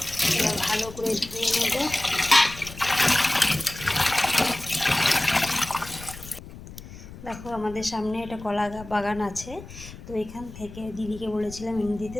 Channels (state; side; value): noise; left; rumble, 15 dB below the sound